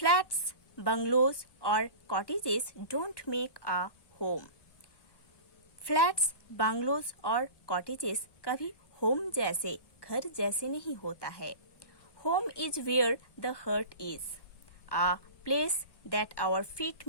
bungalows or cottages don't make a home. Flats, bungalows और cottages कभी home जैसे घर जैसे नहीं होता है. Home is where the heart is, a place that our feet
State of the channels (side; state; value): right; late; 1.1 ms